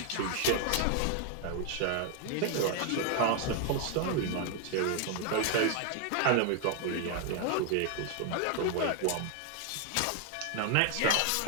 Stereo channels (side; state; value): both; different; correlation 0.01